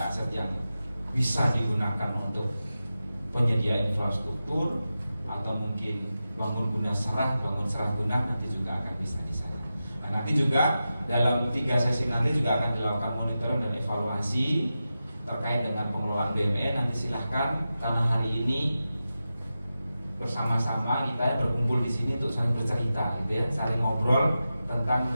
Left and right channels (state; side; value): inverted; both; correlation -0.92